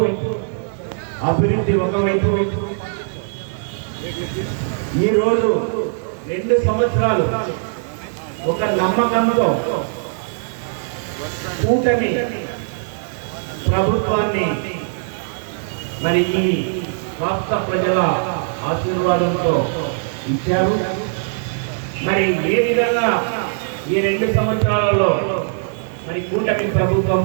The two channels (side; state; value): left; silent; digital silence